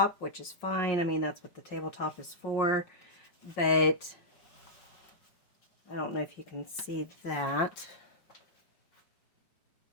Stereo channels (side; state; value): right; late; 5.6 ms